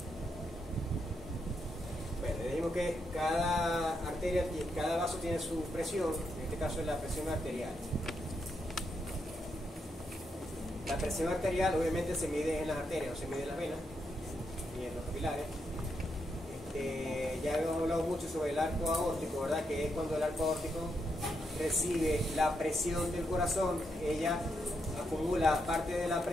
Bueno, dijimos que cada arteria, cada vaso tiene su presión. En este caso es la presión arterial. La presión arterial obviamente se mide en las arterias, no se mide en las venas ni en los capilares. Ya hemos hablado mucho sobre el arco aórtico, ¿verdad? Que es cuando el arco aórtico recibe la presión del corazón, ella acumula parte de la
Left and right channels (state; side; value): normal; both; correlation 0.81